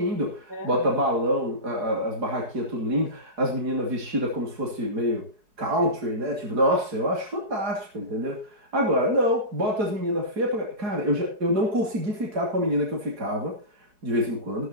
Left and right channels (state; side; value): late; left; 4.7 ms